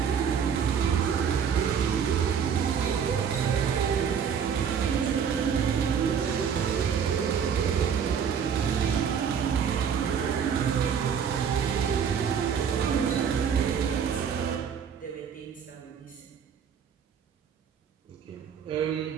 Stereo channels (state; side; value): quieter; left; 7.4 dB